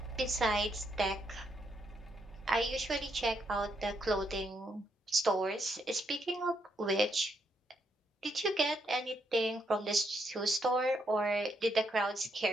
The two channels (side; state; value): both; normal; correlation 0.77